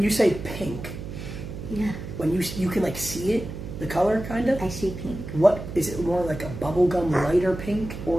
you say pink, Yeah, when you can like see it, the color kind of? I see pink. What, is it more like a bubblegum lighter pink,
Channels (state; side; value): noise; right; hum, 9 dB below the sound